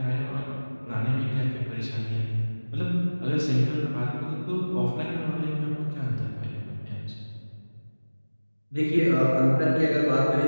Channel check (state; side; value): inverted; both; correlation -1.00